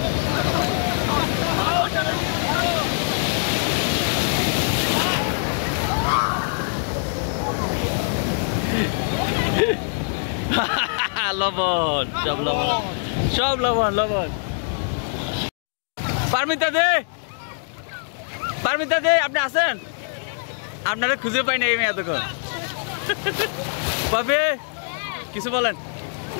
লবণ সব লবণ সব লবণ লবণ। পারমিতা দে, পারমিতা দে, আপনি আছেন? আপনারা খুঁজে পাই না এই মেয়ে এতক্ষণ। বাপে কিছু বলেন,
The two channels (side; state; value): right; silent; 63 dB below the other